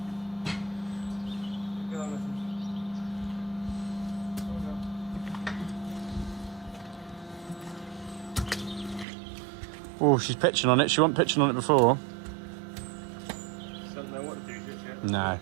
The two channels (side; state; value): left; drops out; at 9.1 s